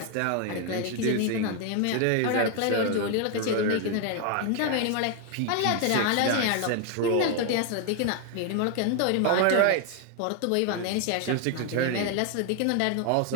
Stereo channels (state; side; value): different; both; correlation 0.01